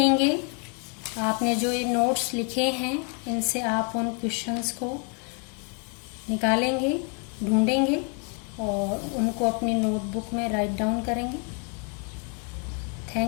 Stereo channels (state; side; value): quieter; right; 35.5 dB